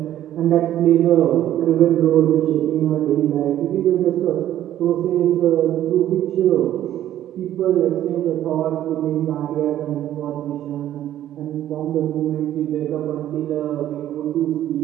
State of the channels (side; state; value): left; quieter; 12.2 dB